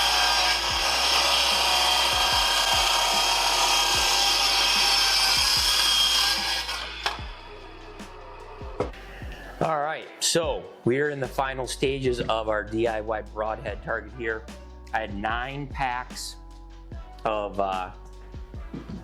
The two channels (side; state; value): both; identical; correlation 1.00